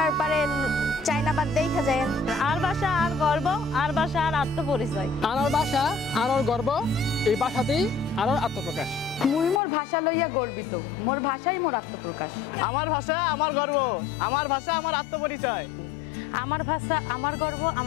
পারে চায়নাবাদ দেখা যায়। আর ভাষা আর গর্ব, আর ভাষা আর আত্মপরিচয়। আনার ভাষা আনার গর্ব, এই ভাষাতেই আনার আত্মপ্রকাশ। মুই মোর ভাষা লইয়া গর্বিত, মোর ভাষাই মোর আত্মপ্রকাশ। আমার ভাষা আমার গর্ব, আমার ভাষা আমার আত্মপরিচয়। আমার ভাষা আমার গর্ব,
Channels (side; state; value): right; drops out; at 9.6 s